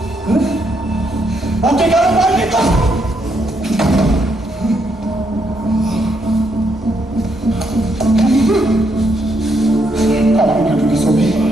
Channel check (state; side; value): normal; both; correlation 0.76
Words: ওকে কেন মারলি তো?